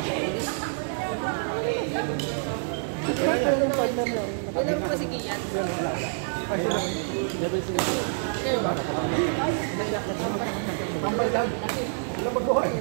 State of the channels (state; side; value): silent; left; 56 dB below the other